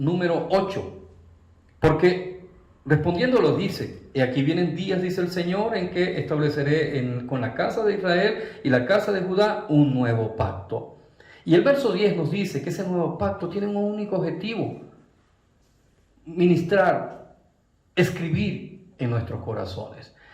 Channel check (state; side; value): identical; both; correlation 1.00